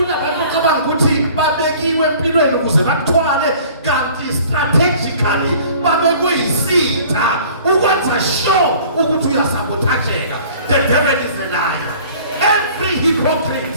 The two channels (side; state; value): both; inverted; correlation -0.49